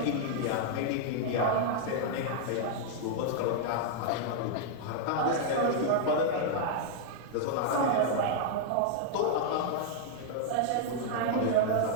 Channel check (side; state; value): both; different; correlation -0.01